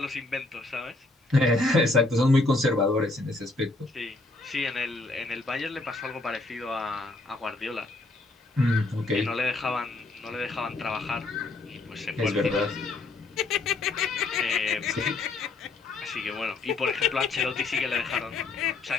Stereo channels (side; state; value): right; quieter; 3.2 dB